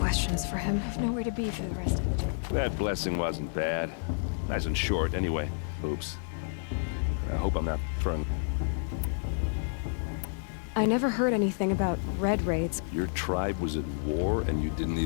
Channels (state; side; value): silent; right; digital silence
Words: for him. I've nowhere to be for the rest of the day. That blessing wasn't bad. Nice and short, anyway. Oops. I hope I'm not throwing... I never heard anything about Red Raids. Your tribe was at war and you didn't